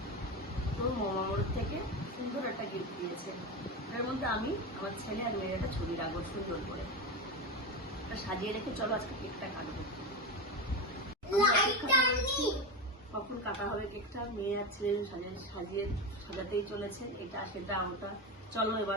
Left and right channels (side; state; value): both; normal; correlation 0.18